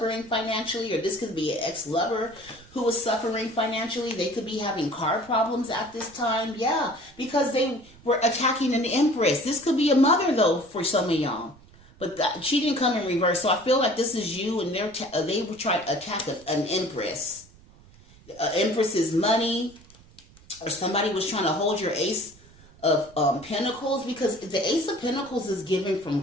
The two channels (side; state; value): right; noise; rumble, 25 dB below the sound